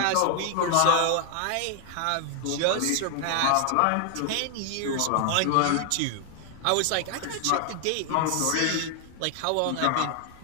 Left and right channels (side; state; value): both; different; correlation 0.00